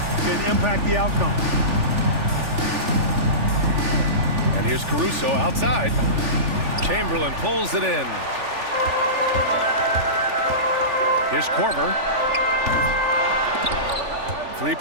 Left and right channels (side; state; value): left; late; 3.4 ms